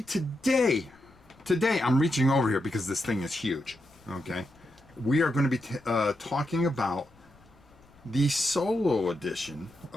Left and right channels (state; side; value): noise; left; rumble, 28 dB below the sound